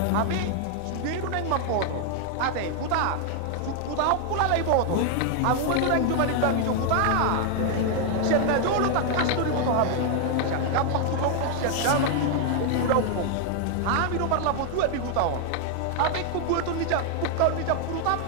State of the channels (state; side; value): different; both; correlation 0.00